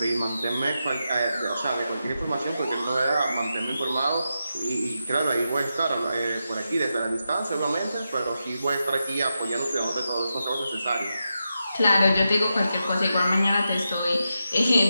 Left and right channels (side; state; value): both; inverted; correlation -0.88